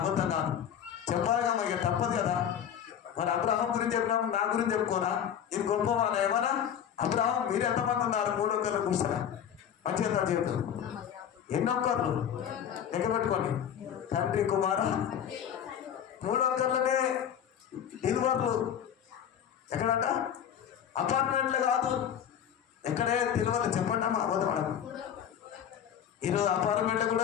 అబద్ధం కాదు. చెప్పాలిగా, మాకు తప్పదు కదా. మరి అబ్రహాం గురించి చెప్పినాము, నా గురించి చెప్పుకోనా? ఇది గొప్పవాన ఏమన్నా? అబ్రహాం మీరు ఎంతమంది ఉన్నారు? 300 కూర్చోరా మంచిగా చేతులు. ఎన్నొక్కర్లు లెక్క పెట్టుకోండి. తండ్రి కుమార 300 డెలివర్లు. ఎక్కడంట? అపార్ట్మెంట్లు కాదు, ఎక్కడే డెలివర్లు చెప్పండి అమ్మా. అబద్ధం. ఈరోజు అపార్ట్మెంట్లు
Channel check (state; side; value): quieter; right; 9.1 dB